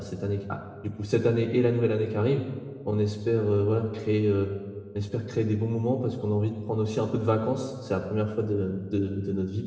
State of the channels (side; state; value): both; identical; correlation 1.00